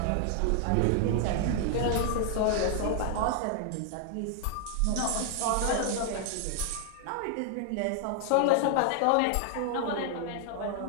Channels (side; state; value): both; different; correlation 0.00